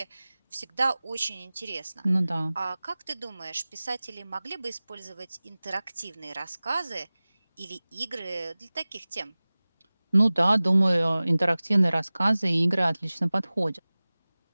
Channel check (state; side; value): inverted; both; correlation -0.99